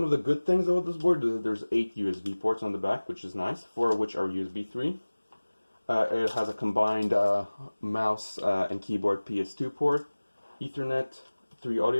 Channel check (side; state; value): both; inverted; correlation -1.00